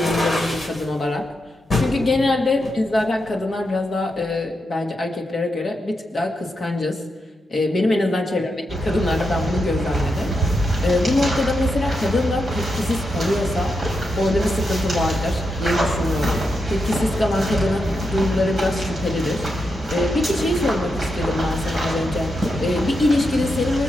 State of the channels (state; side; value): normal; both; correlation 0.85